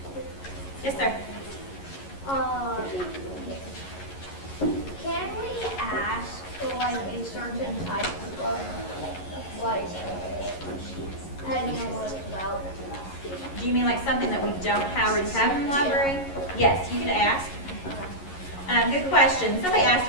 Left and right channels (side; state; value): right; late; 11 ms